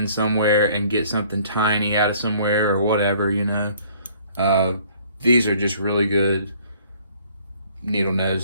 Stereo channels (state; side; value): inverted; both; correlation -0.58